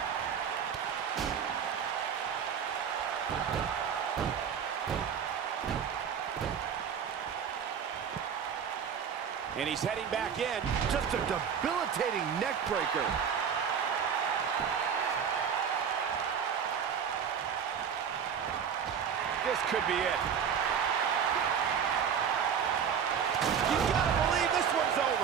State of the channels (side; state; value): left; quieter; 7.5 dB